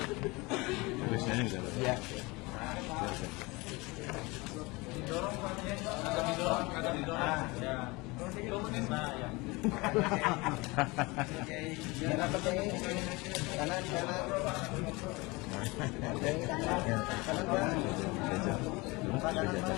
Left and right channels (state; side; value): quieter; right; 24.3 dB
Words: Rilisnya ini bisa. Iya.